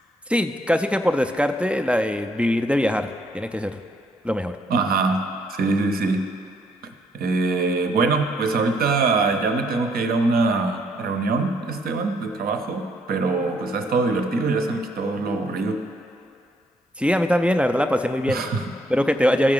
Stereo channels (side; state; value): both; normal; correlation 0.70